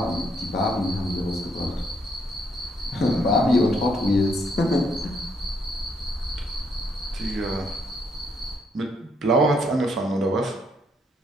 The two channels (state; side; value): normal; both; correlation 0.73